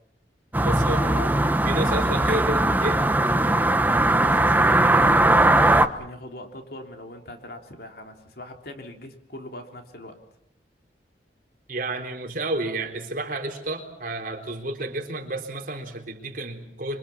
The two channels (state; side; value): normal; both; correlation 0.70